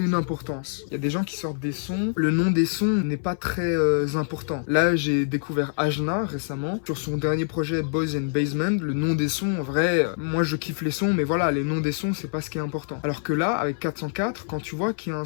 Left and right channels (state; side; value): silent; right; 59 dB below the other